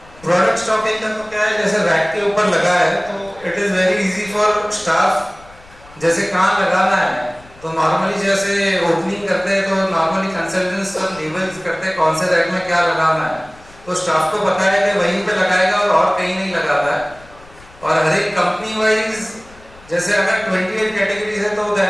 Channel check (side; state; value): left; noise; rumble, 24 dB below the sound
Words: प्रोडक्ट स्टॉकिंग का तो क्या है, जैसे रैक के ऊपर लगा है तो it is very easy for staff. जैसे कहाँ लगाना है तो नॉर्मली जैसे ओपनिंग करते हैं तो नॉर्मली कंसल्टेंट्स सब लेबल्स करते हैं कौन से रैक में क्या लगाना है, तो स्टाफ को पता है कि वहीं पे लगाएगा और कहीं नहीं लगाता है. और हर एक कंपनी वाइज जैसे अगर 28 कैटेगरीज है तो